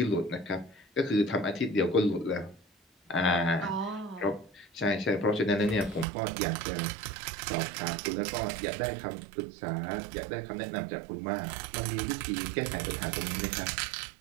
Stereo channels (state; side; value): drops out; left; at 6.1 s